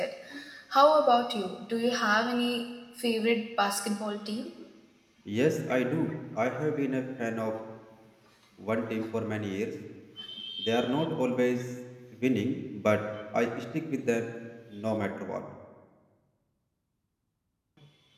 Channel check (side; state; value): both; identical; correlation 1.00